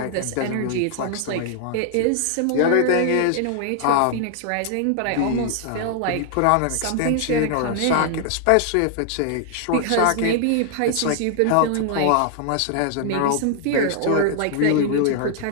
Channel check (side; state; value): both; different; correlation 0.00